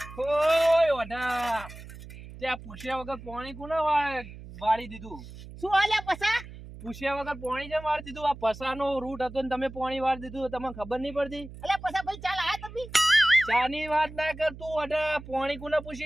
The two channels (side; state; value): right; noise; hum, 15 dB below the sound